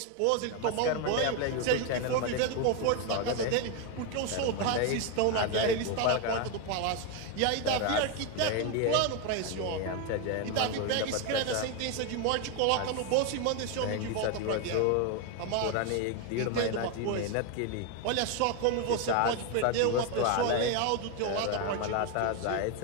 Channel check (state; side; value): different; both; correlation 0.02